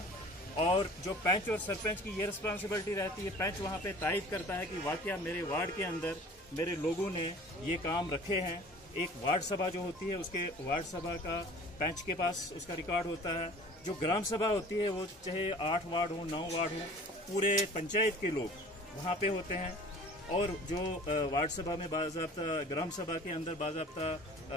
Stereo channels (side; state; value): both; normal; correlation 0.46